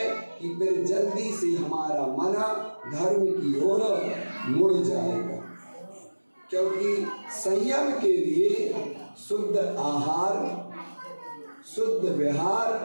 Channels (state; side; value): inverted; both; correlation -1.00